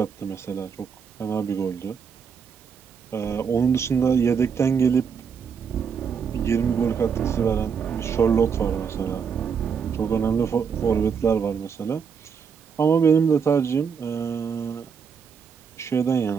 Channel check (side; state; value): left; quieter; 6.5 dB